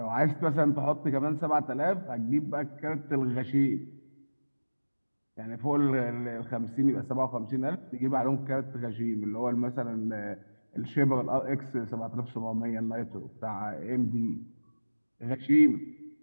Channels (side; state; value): both; inverted; correlation -1.00